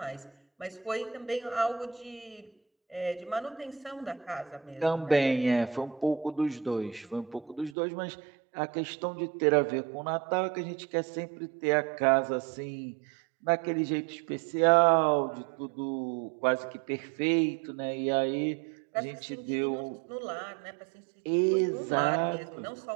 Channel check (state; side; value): drops out; left; at 7.8 s